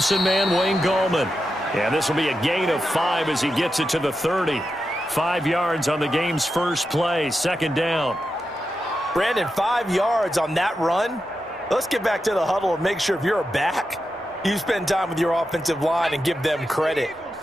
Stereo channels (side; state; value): both; normal; correlation 0.89